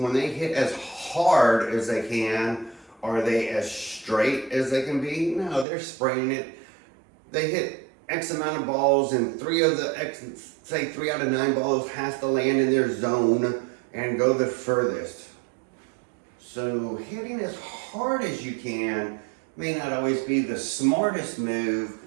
they hit as hard as they can, are they as straight as they can be? No, they're spraying it. They hit X amount of balls, and three out of 9 balls has to land in their zone and go the furthest. So hitting as hard as you can may not always be the smartest move,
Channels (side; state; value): left; drops out; at 5.7 s